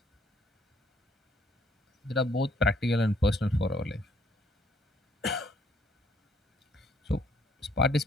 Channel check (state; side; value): normal; both; correlation 0.66